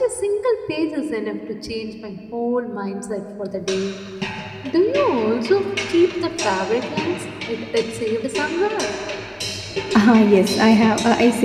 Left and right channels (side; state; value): both; identical; correlation 1.00